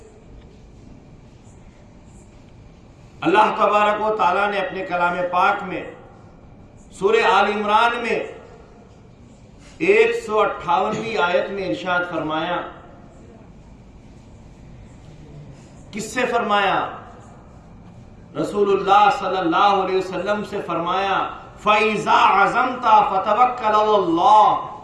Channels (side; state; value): both; identical; correlation 1.00